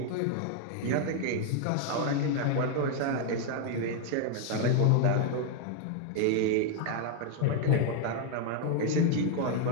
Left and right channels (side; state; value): both; different; correlation 0.00